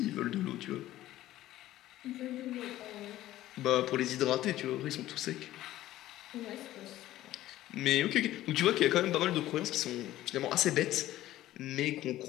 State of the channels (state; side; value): quieter; right; 14.6 dB